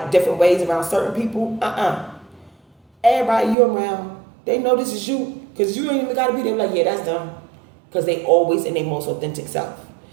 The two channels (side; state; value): left; drops out; at 3.6 s